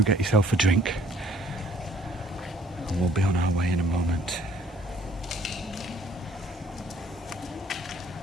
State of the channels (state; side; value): normal; both; correlation 0.58